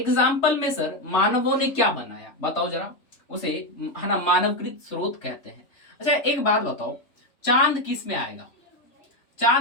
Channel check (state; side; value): late; right; 3.4 ms